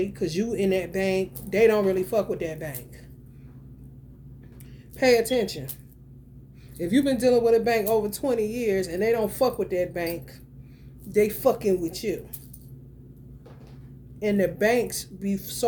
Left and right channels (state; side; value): identical; both; correlation 1.00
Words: because you in that bank, they don't really fuck with that bank. Pay attention. If you've been dealing with a bank over 20 years and they don't fuck with that bank, they fucking with you. And the banks be